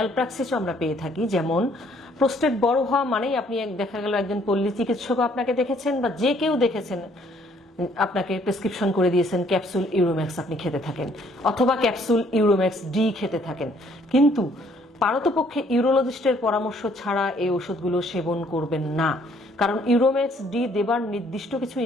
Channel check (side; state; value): both; normal; correlation 0.63